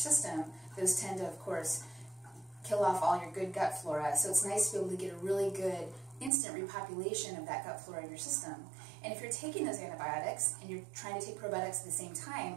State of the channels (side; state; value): left; drops out; at 6.3 s